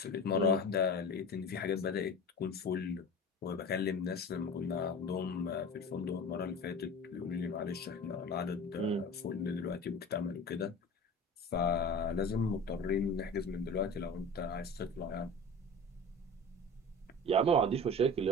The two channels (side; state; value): both; normal; correlation 0.35